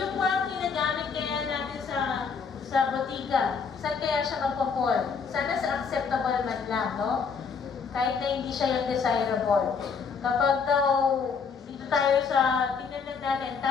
mga ginagamit kaya natin sa botika, saan kaya siya magpo-fall? Sana sa acceptable man lang, no? Kahit na hindi siya yung desirable. Kapag daw, dito tayo sa, tingnan lang natin,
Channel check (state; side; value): quieter; right; 5.7 dB